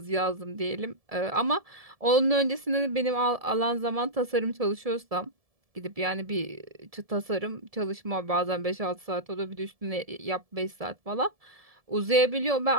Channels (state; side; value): late; left; 1.7 ms